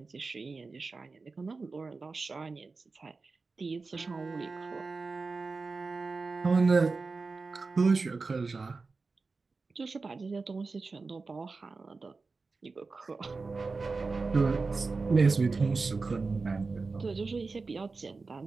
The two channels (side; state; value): left; quieter; 4.1 dB